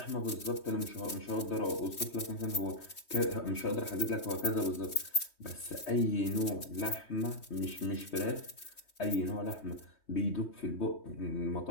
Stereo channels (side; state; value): right; late; 3.2 ms